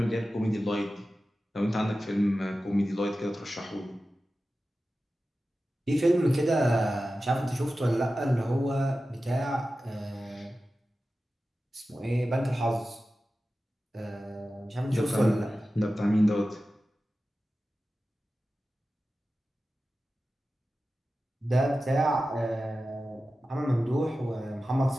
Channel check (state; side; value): normal; both; correlation 0.94